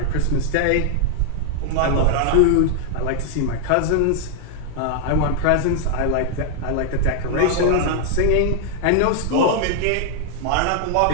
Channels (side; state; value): both; different; correlation 0.00